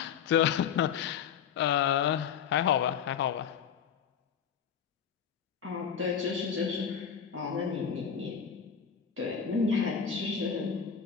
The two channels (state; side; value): quieter; right; 7.6 dB